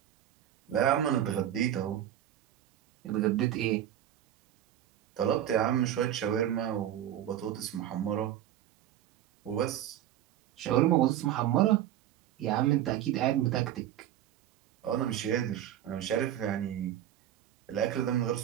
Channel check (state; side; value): quieter; left; 11.5 dB